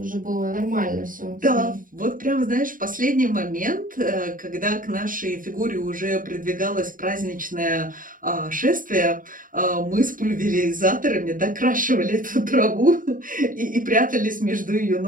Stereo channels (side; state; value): left; late; 0.39 ms